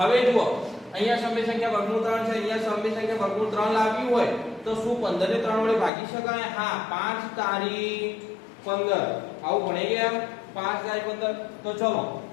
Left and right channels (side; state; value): right; drops out; at 5.9 s